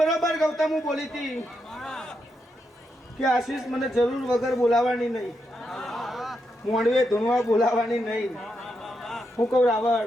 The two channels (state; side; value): normal; both; correlation 0.83